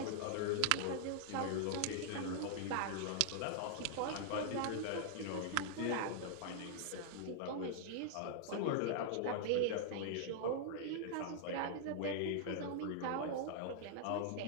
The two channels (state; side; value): different; both; correlation -0.01